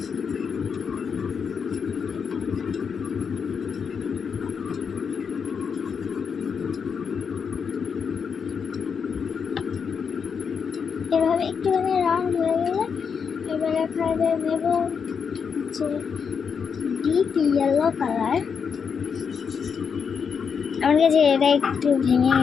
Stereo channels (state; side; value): quieter; right; 6.4 dB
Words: এভাবে একটুখানি রাউন্ড হয়ে গেলে এবার এখানে নেব হচ্ছে ডিপ ইয়েলো কালার। আমার কাছে এটা একটু ভেঙে